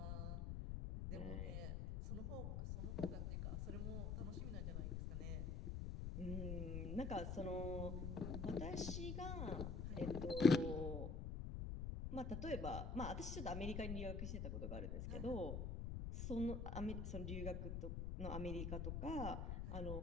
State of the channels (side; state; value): left; noise; rumble, 2 dB below the sound